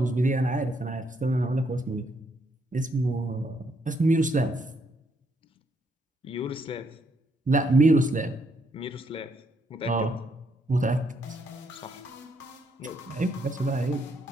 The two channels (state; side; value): normal; both; correlation 0.74